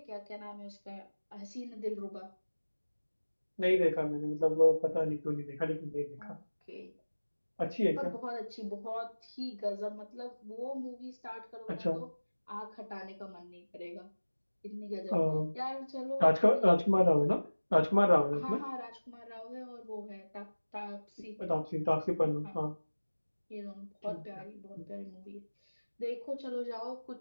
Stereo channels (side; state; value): both; inverted; correlation -1.00